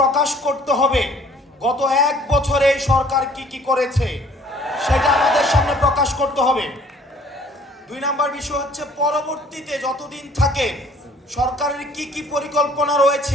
করতে হবে গত 1 বছরে এই সরকার কি কি করেছে সেটা আমাদের সামনে প্রকাশ করতে হবে। 2 নম্বর বিষয় হচ্ছে পরবর্তীতে যতদিন থাকে সরকারের কি কি পরিকল্পনা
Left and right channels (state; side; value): normal; both; correlation 0.56